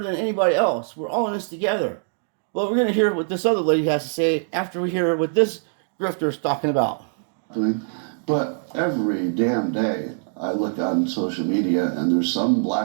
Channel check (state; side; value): silent; left; digital silence